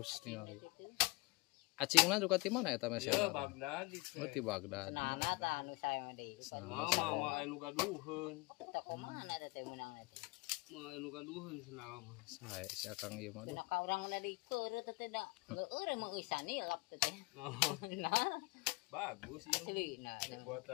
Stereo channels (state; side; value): quieter; right; 24.7 dB